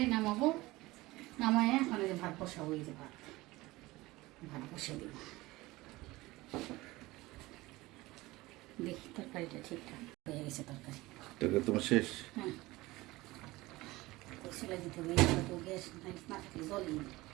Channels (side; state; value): left; quieter; 19.9 dB